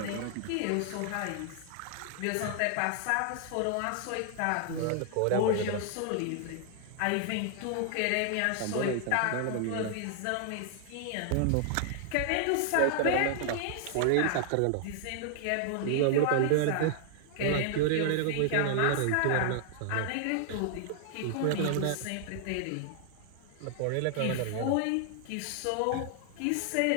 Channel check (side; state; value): both; different; correlation 0.00